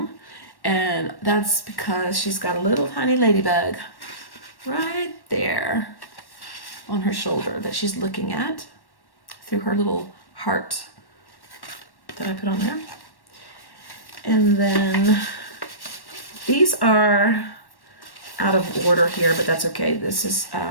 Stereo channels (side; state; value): right; late; 1.1 ms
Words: And that's because she's got a little tiny ladybug right there on her shoulder that she's looking at through her little heart that I put on there. And then these are out of order here, but that's okay. This is